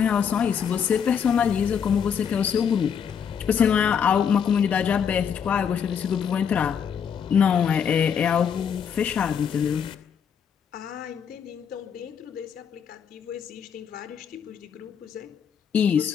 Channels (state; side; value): quieter; right; 7.5 dB